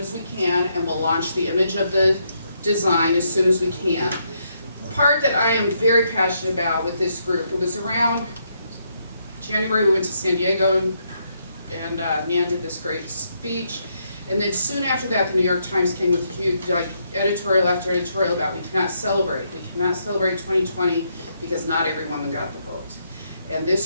we can, and we'll launch the image of the design as soon as we can. The part that I am very passionate about with this group, it was around January we went to San Diego, and Nan did this great speech, and then soon after that the New York Times came with a huge editorial after editorial about we cannot celebrate 2020 because not every woman got the vote. And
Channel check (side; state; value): both; inverted; correlation -0.76